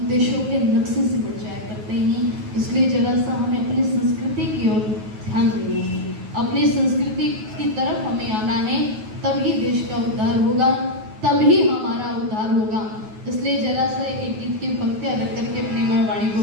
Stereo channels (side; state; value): left; late; 9.4 ms